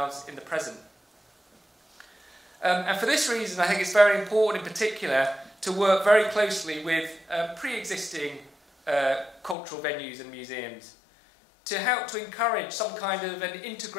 in the present. And for this reason, I think it's very important in particular to work very closely with pre-existing cultural venues and museums to help to encourage some kind of an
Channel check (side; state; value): right; drops out; at 9.6 s